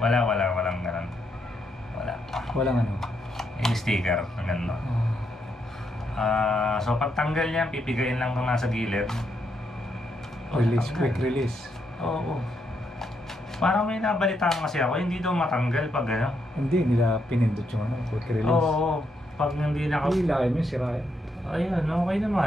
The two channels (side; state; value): both; normal; correlation 0.78